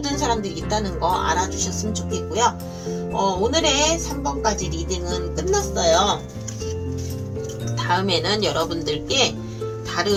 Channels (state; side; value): identical; both; correlation 1.00